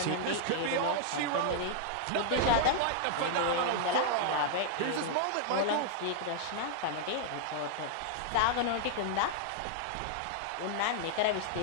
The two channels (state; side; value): different; both; correlation -0.01